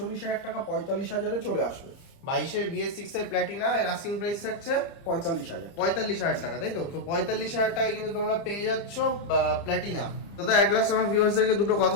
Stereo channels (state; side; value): late; right; 30 ms